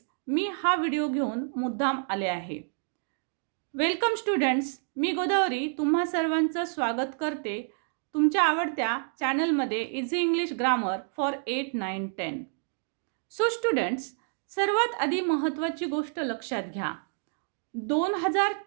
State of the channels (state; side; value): silent; left; digital silence